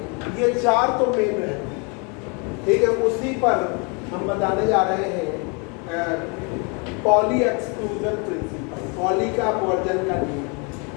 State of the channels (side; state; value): right; quieter; 33.5 dB